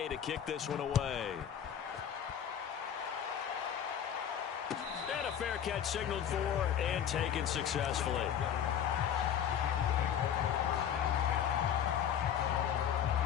to kick this one away. And a fair catch signaled for and taken successfully.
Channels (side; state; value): right; quieter; 9.0 dB